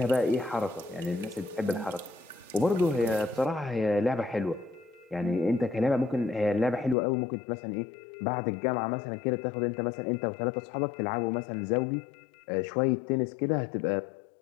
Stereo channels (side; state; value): right; drops out; at 7.0 s